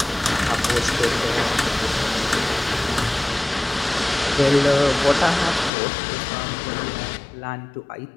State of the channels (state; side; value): drops out; right; at 5.7 s